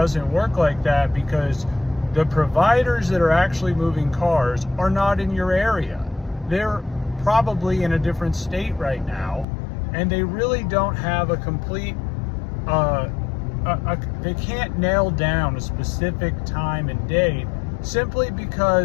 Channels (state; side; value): drops out; right; at 9.5 s